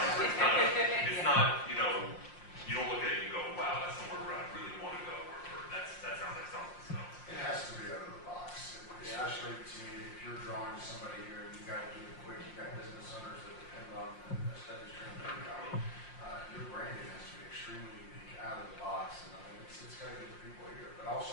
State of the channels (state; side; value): late; right; 5.6 ms